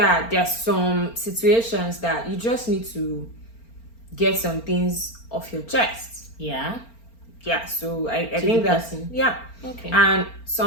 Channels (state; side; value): late; right; 4.4 ms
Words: there's some situations that you just need to get some things off your chest. Yeah. So I think that's okay. And